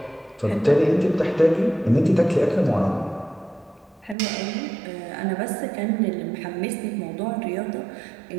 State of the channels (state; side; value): drops out; left; at 4.2 s